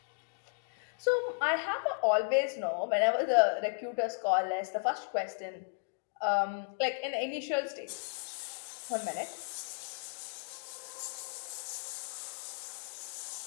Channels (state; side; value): silent; right; digital silence